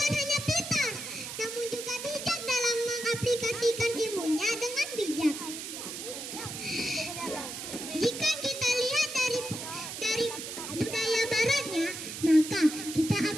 hanya pintar, namun juga bijak dalam mengaplikasikan ilmunya dengan bijak. Jika kita lihat dari budaya baratnya, maka kita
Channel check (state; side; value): noise; right; hiss, 8 dB below the sound